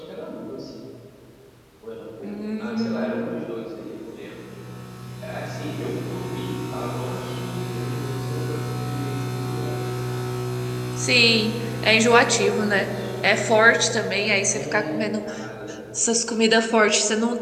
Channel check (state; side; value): identical; both; correlation 1.00